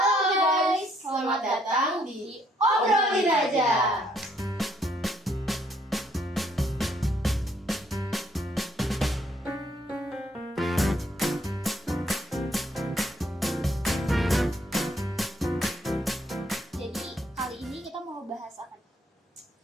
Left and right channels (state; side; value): normal; both; correlation 0.69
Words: guys, selamat datang di Obrolin Aja. Jadi kali ini kita mau bahas apa?